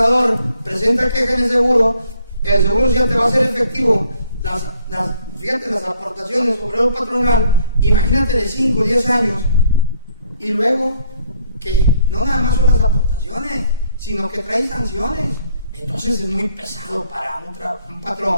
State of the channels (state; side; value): inverted; both; correlation -0.64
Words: presenta queja en el seguro social te va a hacer efectivo fíjate, las aportaciones sobre el patronal, imagínate de 5 o 10 años, y luego que no nada más son las aportaciones, sino que trae sanciones. Entonces es muy pesado para un